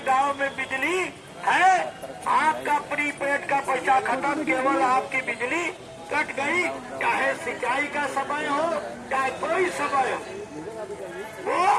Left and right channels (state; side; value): identical; both; correlation 1.00